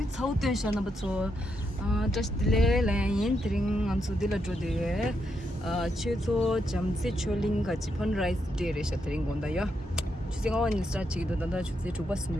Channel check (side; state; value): both; normal; correlation 0.81